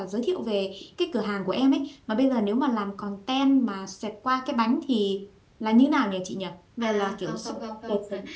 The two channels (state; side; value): identical; both; correlation 1.00